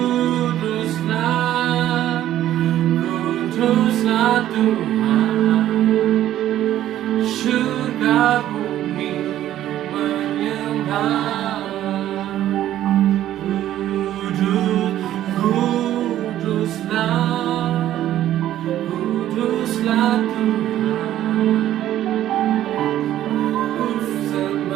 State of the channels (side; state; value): left; quieter; 12.6 dB